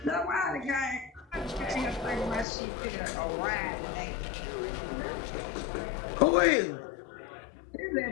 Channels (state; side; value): drops out; right; at 2.5 s